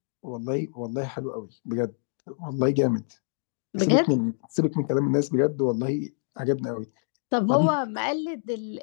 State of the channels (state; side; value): silent; right; digital silence